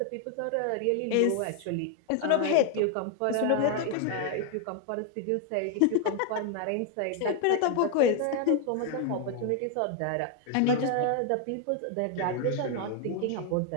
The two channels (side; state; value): both; different; correlation 0.00